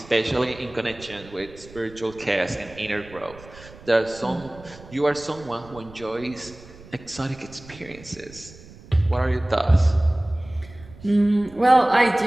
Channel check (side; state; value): right; noise; rumble, 20 dB below the sound